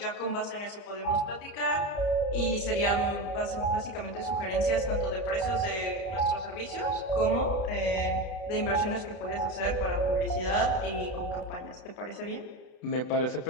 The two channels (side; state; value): right; late; 32 ms